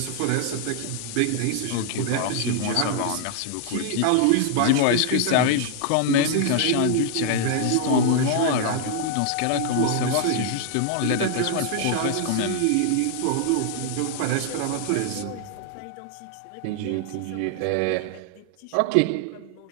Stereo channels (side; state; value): both; different; correlation 0.00